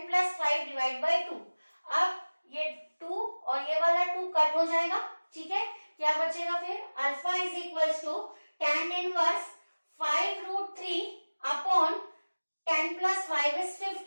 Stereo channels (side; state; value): both; inverted; correlation -1.00